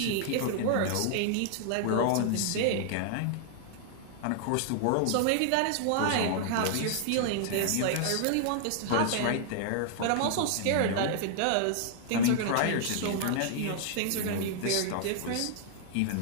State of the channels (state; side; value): different; both; correlation -0.01